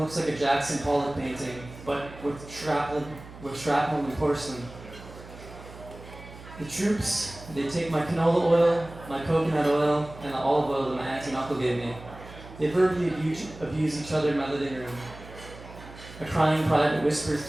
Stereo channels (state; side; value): noise; right; hum, 17 dB below the sound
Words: like a Jackson Pollock painting, but with shrapnel and porcelain. The troops, they take my canola oil, my coconut oil, and the olive oil that my auntie and uncle gave me. They verbally abuse each other in my living room. A crying private whispers